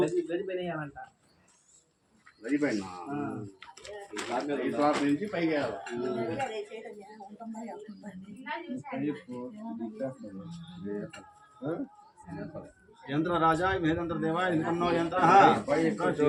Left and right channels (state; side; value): identical; both; correlation 1.00